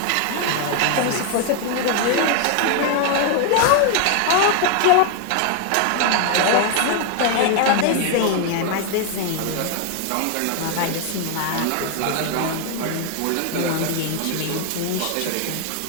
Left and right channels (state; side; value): different; both; correlation 0.01